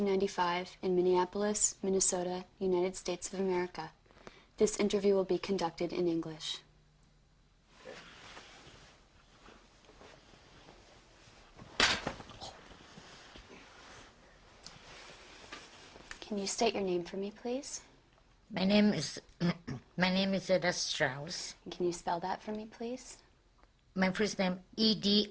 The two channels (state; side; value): identical; both; correlation 1.00